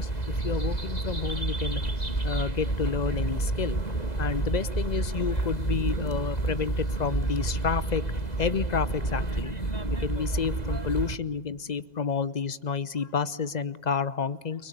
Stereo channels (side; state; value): right; late; 2.0 ms